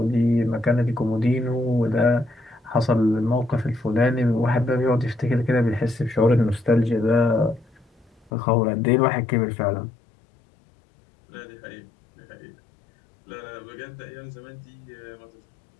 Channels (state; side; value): drops out; right; at 8.3 s